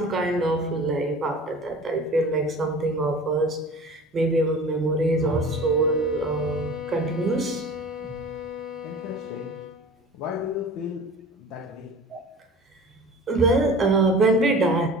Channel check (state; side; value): normal; both; correlation 0.40